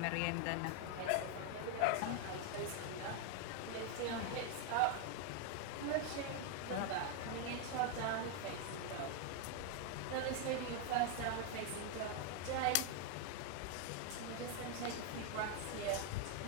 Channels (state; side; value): different; both; correlation 0.01